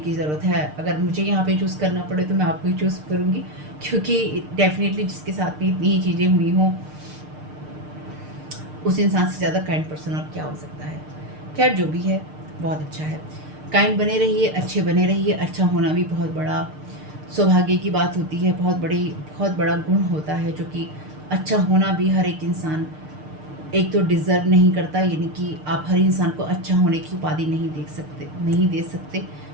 ज़रूरत है। अगर मुझे यहाँ पे चूज़ करना पड़े तो मैं आपको ही चूज़ करूँगी, क्योंकि डेफ़िनेटली जिसके साथ में इतनी ही चीज़ें हुई हों, उस इंसान से ज़्यादा काइंड पर्सन और क्या हो सकता है। खैर जो भी है बहुत अच्छा है। काइंड बने रहिए, अच्छे बने रहिए। अच्छा होना भी बहुत बड़ा सौभाग्य की बात होती है, बहुत बड़ा गुण होता है, जो कि अच्छा होना भी हर एक इंसान एक तो डिज़र्व नहीं करता, यानी कि आप हर इंसान को अच्छा होने की उपाधि नहीं दे सकते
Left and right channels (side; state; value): left; late; 6.6 ms